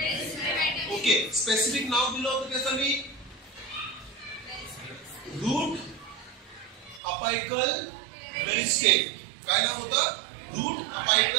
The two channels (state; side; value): drops out; left; at 7.0 s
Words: ओके, स्पेसिफिक नाव दिलं होतं त्याचं मी, रूट अपायकल मेरिस्टेम. काय नाव होतं? Route